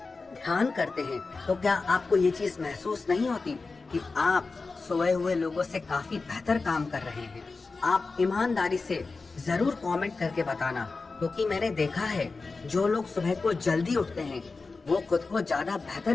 ध्यान करते हैं, तो क्या आपको ये चीज महसूस नहीं होती कि आप सोए हुए लोगों से काफी बेहतर काम कर रहे हैं? आप ईमानदारी से जरूर कमेंट करके बताना, क्योंकि मैंने देखा है जो लोग सुबह को जल्दी उठते हैं वो खुद को ज्यादा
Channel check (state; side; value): quieter; right; 4.0 dB